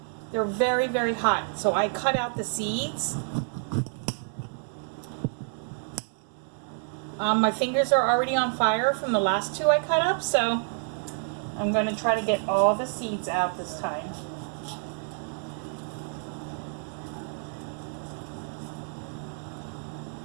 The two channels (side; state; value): left; silent; 59 dB below the other